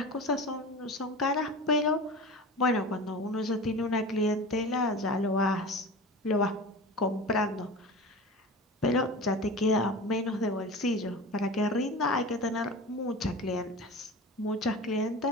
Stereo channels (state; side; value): normal; both; correlation 0.32